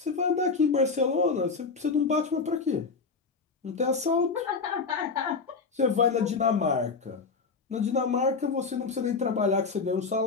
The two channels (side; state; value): right; quieter; 4.6 dB